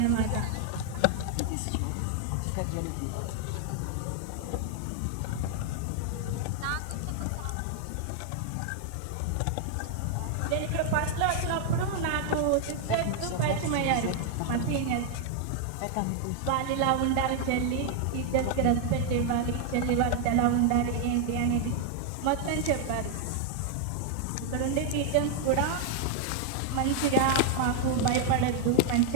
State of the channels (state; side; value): different; both; correlation 0.00